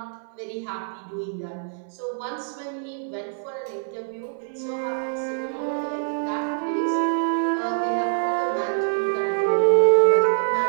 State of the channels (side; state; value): left; silent; digital silence